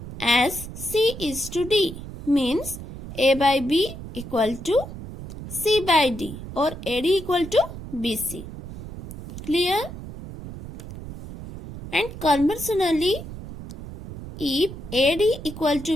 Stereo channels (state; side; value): noise; right; rumble, 11 dB below the sound